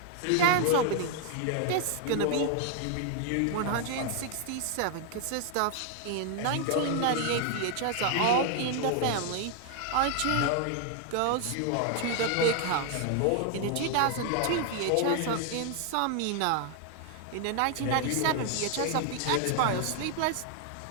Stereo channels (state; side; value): different; both; correlation 0.00